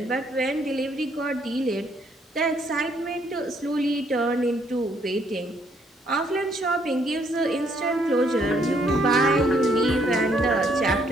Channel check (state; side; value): normal; both; correlation 0.68